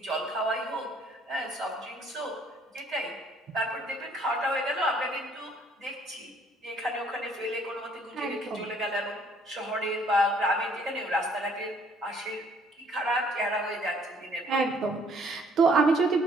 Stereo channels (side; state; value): both; normal; correlation 0.61